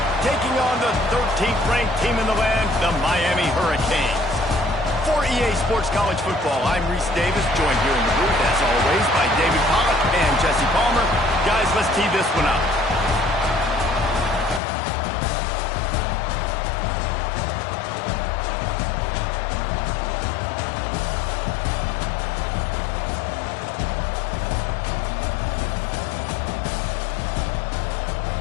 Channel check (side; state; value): right; drops out; at 14.6 s